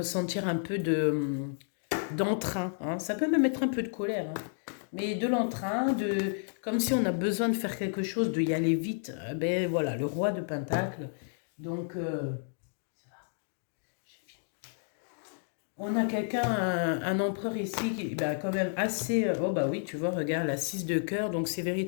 un peu d'entrain. Hein. Ça peut même être un peu de colère. Hein. Mais de l'entrain, comme si on a besoin de faire quelque chose, de y aller vite. Ben voilà, le roi de Pentacle. Donc, on a quelqu'un, un empereur ici, qui bah, quand même assez... oh bah oui, tu vois, regarde, la 6 de cœur. Donc, c'est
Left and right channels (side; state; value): right; silent; digital silence